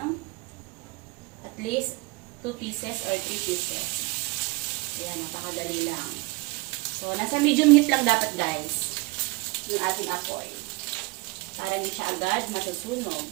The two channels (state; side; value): quieter; left; 25.3 dB